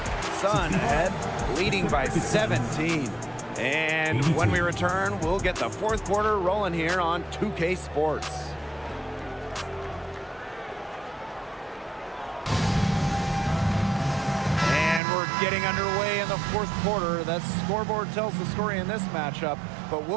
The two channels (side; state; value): left; drops out; at 15.0 s